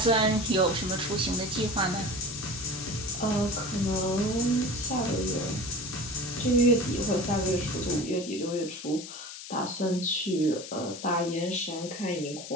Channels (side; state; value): left; noise; hiss, 11 dB below the sound